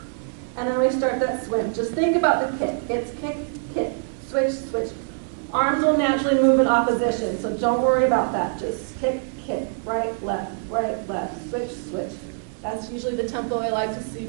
And then we start that swim. Just think about the kick. It's kick, kick, switch, switch. Arms will naturally move in opposition, so don't worry about that. Just kick, kick, right, left, switch, switch. That's usually the tempo I like to see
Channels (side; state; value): left; silent; digital silence